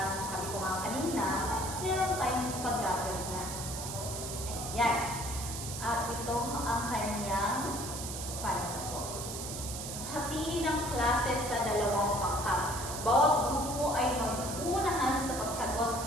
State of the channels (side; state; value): right; noise; hiss, 7 dB below the sound